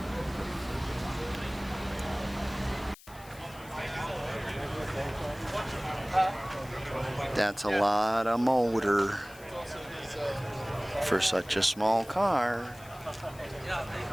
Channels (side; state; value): left; noise; hiss, 21 dB below the sound